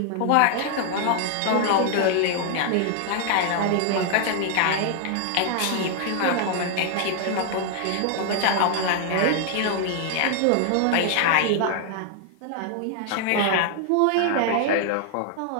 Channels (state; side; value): different; both; correlation 0.00